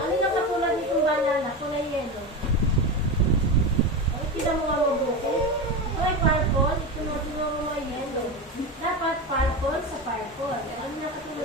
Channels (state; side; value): normal; both; correlation 0.21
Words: yung katulad nitong banana? Kulay yellow. Ay, kita mo nga mabuti. Ito ay purple. Ito mo mo yellow. Dapat purple sa purple. Ano yung